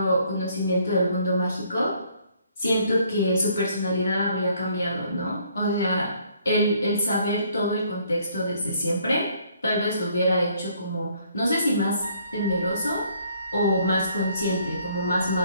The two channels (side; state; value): both; inverted; correlation -0.64